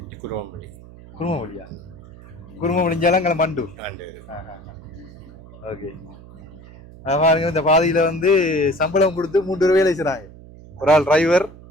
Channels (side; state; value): right; noise; hum, 19 dB below the sound